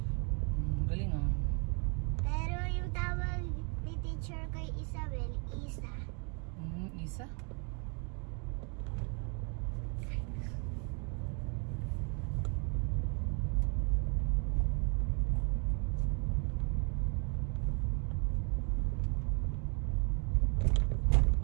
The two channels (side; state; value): left; quieter; 36.6 dB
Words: Galing ah. Pero yung tawag ni teacher kay Isabel, Isa. Isa?